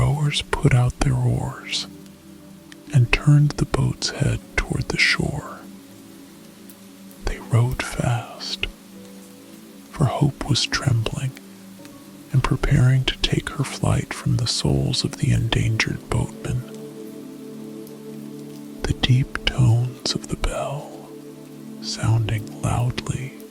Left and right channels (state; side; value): identical; both; correlation 1.00